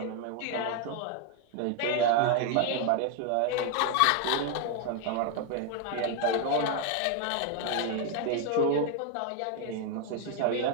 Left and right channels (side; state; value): both; different; correlation 0.01